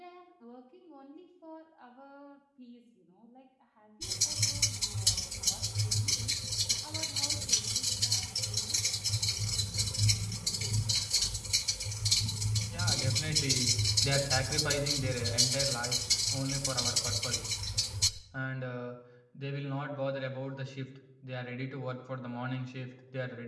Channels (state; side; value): identical; both; correlation 1.00